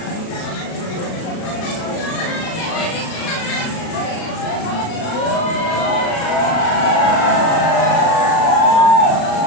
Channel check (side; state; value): right; late; 36 ms